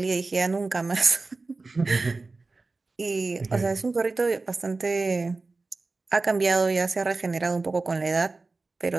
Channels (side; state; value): left; quieter; 3.6 dB